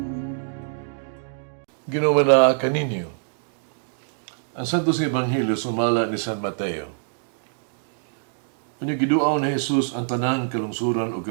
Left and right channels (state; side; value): silent; left; digital silence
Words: Ginawa na kaninyo. Ang Santos nga Ebanghelyo sumala ni San Mateo. Kanya giduaw ni Jesus ang tanang kalungsuran o